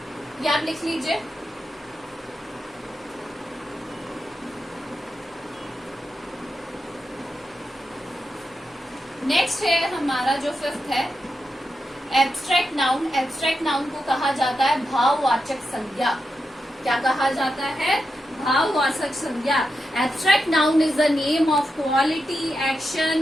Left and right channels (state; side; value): normal; both; correlation 0.87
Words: ये आप लिख लीजिए। नेक्स्ट है हमारा जो फिफ्थ है एब्स्ट्रैक्ट नाउन। एब्स्ट्रैक्ट नाउन को कहा जाता है भाववाचक संज्ञा। क्या कहा जाता है? भाववाचक संज्ञा। Abstract noun is the name of quality,